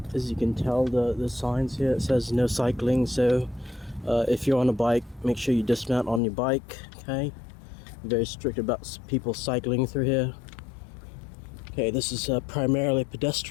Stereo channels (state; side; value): drops out; right; at 6.2 s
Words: As you can tell, the signs here, it says no cycling, so if you're on a bike, make sure you dismount on your bike. Okay, very strict about people cycling through here. Okay, this is primarily a